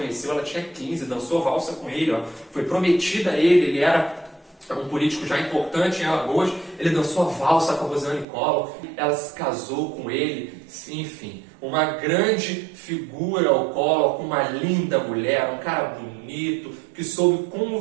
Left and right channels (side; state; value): left; drops out; at 8.2 s